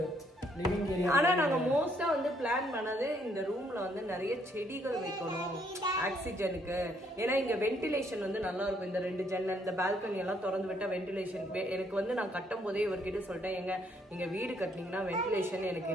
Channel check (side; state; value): both; normal; correlation 0.69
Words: லிவிங் ஏரியா. ஆனா நாங்க மோஸ்டா வந்து பிளான் பண்ணது இந்த ரூம்ல வந்து நிறைய செடிகள் வைக்கணும் ஆக்சிஜனுக்கு. ஏன்னா இங்க வென்டிலேஷன் வந்து நல்லா இருக்கும். இந்த 2 ஜன்னல், இந்த பால்கனி எல்லாம் திறந்து விட்டா வென்டிலேஷன். எனக்கு வந்து நான் கட்டும் போதே இவர்கிட்ட சொல்லிட்டேன், நீங்க வீடு கட்டினீங்கன்னா வென்டிலேஷன் எனக்கு